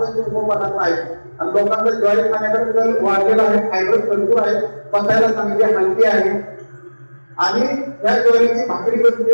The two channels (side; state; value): both; inverted; correlation -1.00